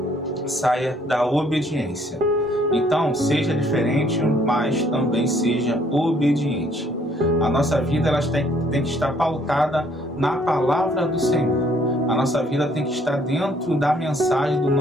saia da obediência. Então, seja diferente, mas também seja obediente. A nossa vida tem que estar pautada na palavra do Senhor. A nossa vida tem que estar dentro da mensagem do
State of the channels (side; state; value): both; normal; correlation 0.63